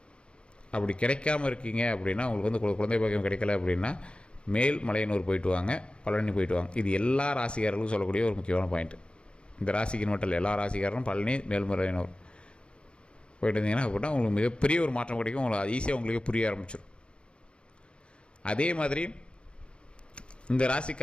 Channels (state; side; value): late; right; 0.056 ms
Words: அப்படி கிடைக்காமல் இருக்கீங்க அப்படின்னா, உங்களுக்கு வந்து குழந்தை பாக்கியம் கிடைக்கல அப்படின்னா, மேல்மலையனூர் போயிட்டு வாங்க, பழனி போயிட்டு வாங்க. இது எல்லா ராசிக்காரர்களுக்கும் சொல்லக்கூடிய ஒரு முக்கியமான பாயிண்ட்டு. இந்த ராசிக்கு மட்டும் இல்லை, எல்லா ராசிக்காரரும் பழனி, மேல்மலையனூர் போயிட்டு இருந்தீங்கன்னா அப்படின்னா உங்களுக்கு மிகப்பெரிய ஒரு மாற்றம் கிடைக்கும். உங்களுக்கு ஈஸியாக உங்களுக்கு புரிய ஆரம்பிச்சிடும். அதே மாதிரி இந்த